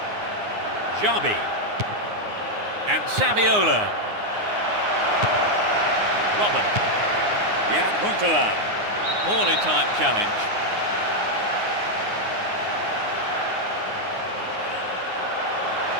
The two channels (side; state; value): left; late; 9.7 ms